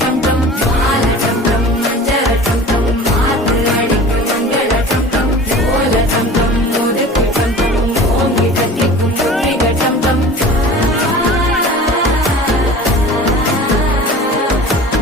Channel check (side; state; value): both; normal; correlation 0.40